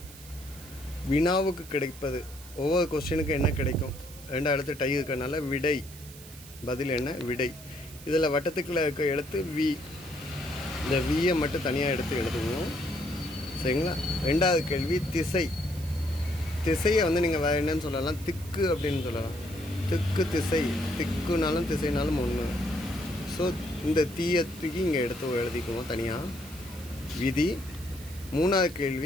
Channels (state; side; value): noise; right; hiss, 18 dB below the sound